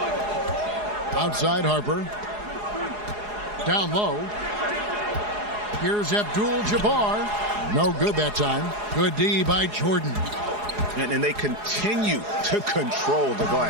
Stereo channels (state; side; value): late; left; 4.8 ms